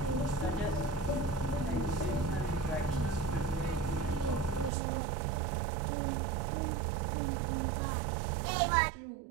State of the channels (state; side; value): drops out; left; at 4.7 s